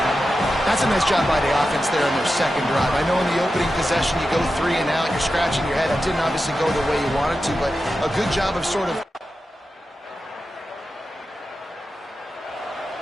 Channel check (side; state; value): both; normal; correlation 0.91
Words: That's a nice job by the offense there in their second drive. I know in the opening possession you go 3 and out, you're scratching your head. That didn't obviously go the way you wanted to, but a good job of sort of...